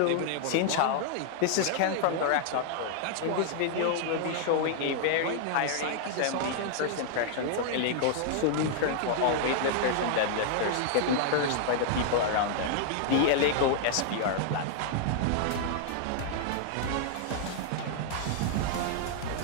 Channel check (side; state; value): both; different; correlation 0.00